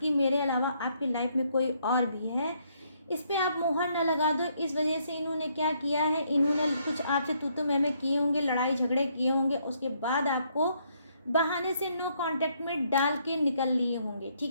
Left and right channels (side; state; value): both; inverted; correlation -0.71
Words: मेरे अलावा आपकी लाइफ में कोई और भी है, इस पे आप मुहर ना लगा दो। इस वजह से इन्होंने क्या किया है, इन्होंने कुछ आपसे तू मैं किए होंगे, लड़ाई झगड़े किए होंगे, उसके बाद आपको बहाने से नो कांटेक्ट में डाल के निकल लिए होंगे,